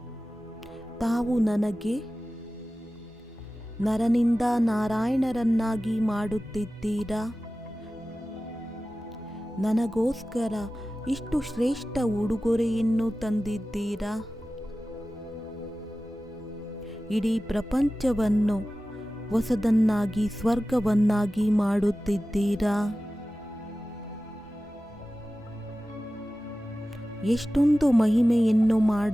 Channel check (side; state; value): both; normal; correlation 0.95